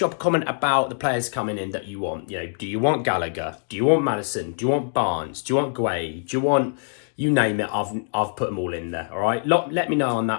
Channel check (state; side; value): silent; right; digital silence